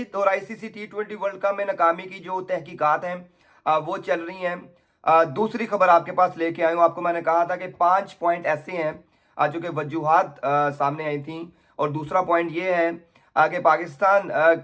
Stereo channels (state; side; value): identical; both; correlation 1.00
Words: और आईसीसी T20 वर्ल्ड कप में नाकामी की जो तहकीकात हैं वो चल रही हैं। दूसरी खबर आपके पास लेके आया हूँ। आपको मैंने कहा था कि 5 पॉइंट ऐसे हैं जो कि वजूहात सामने आई थी। और दूसरा पॉइंट ये है कि पाकिस्तान